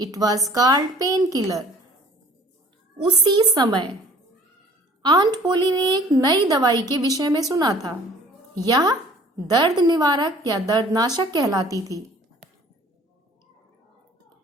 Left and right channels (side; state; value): both; normal; correlation 0.51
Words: It was called painkiller. उसी समय आंट पोली ने एक नई दवाई के विषय में सुना था। यह दर्द निवारक या दर्दनाशक कहलाती थी।